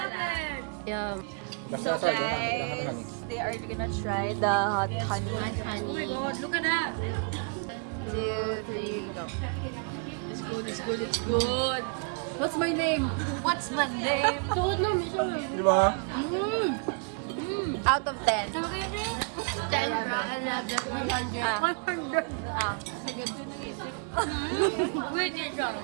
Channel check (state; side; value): quieter; left; 37.7 dB